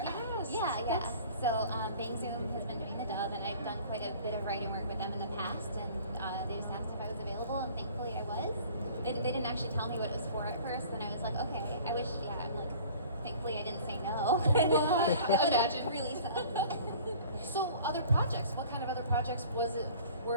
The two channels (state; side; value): inverted; both; correlation -0.47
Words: asked. Yeah. So Bang Zoom has been doing the dub, and I've done quite a bit of writing work with them in the past, and they just asked if I was available, and thankfully I was. They didn't actually tell me what it was for at first, and I was like, okay. I wish, I'm like, thankfully I didn't say no. Imagine. Really sad. So other projects, what kind of other projects